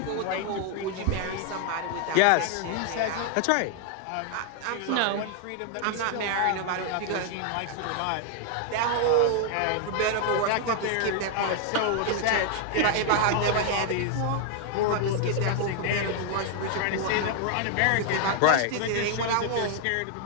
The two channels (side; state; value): both; different; correlation 0.00